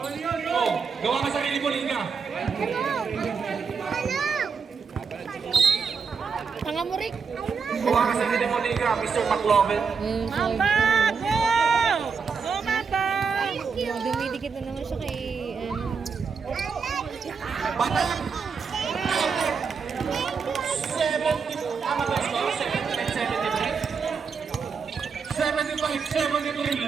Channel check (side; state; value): left; quieter; 5.6 dB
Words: Oh, gawa ka sarili mo, Liga. Tanga mo, Rick. Gawa ka sarili mo, Liga, Mr. McLovin. Mamba! Go! Go, Mamba! Dumidikit na naman siya kay, Batang! 70, tama ba ito? 75, 73,